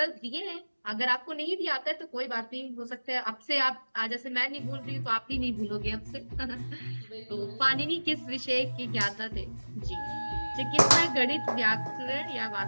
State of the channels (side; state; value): both; inverted; correlation -1.00